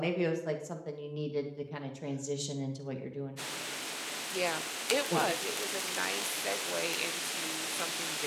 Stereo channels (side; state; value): both; identical; correlation 1.00